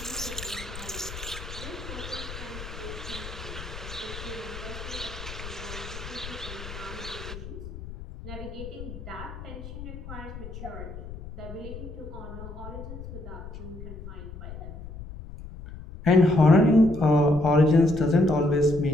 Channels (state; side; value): noise; left; rumble, 11 dB below the sound